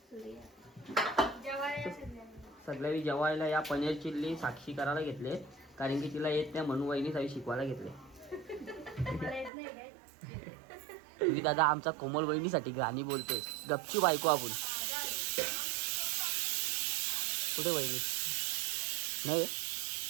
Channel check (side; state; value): left; drops out; at 9.5 s